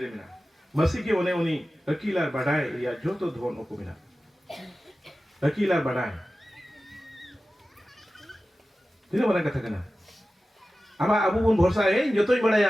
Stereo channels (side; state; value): both; normal; correlation 0.95